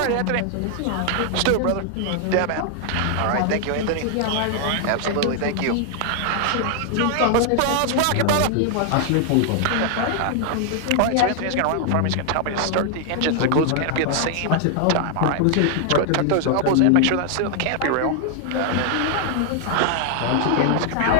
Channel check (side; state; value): both; different; correlation 0.00